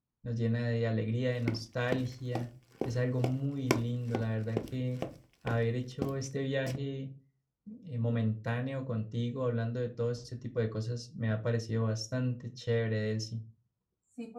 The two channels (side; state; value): both; identical; correlation 1.00